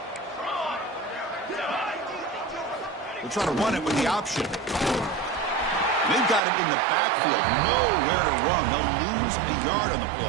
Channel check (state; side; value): drops out; left; at 6.4 s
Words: They'll try to run it with the option. They've got him in the backfield. Nowhere to run. They'll lose a yard on the